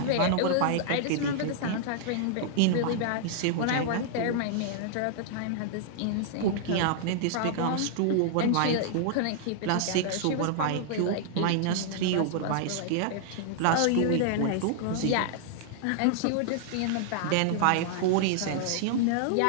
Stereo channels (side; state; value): both; different; correlation -0.01